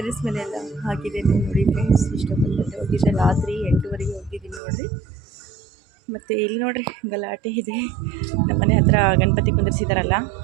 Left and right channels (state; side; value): drops out; left; at 4.6 s